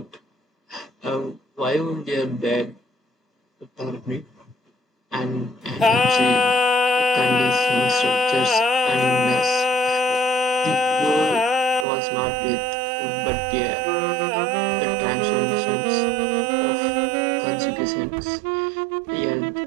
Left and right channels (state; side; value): drops out; left; at 11.9 s